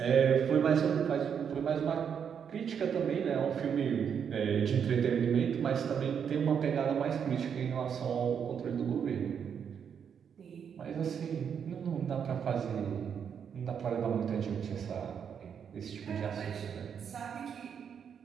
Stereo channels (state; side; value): quieter; left; 7.5 dB